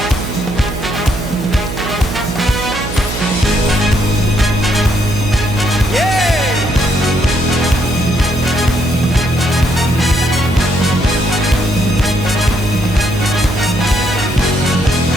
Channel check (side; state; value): right; noise; hum, 7 dB below the sound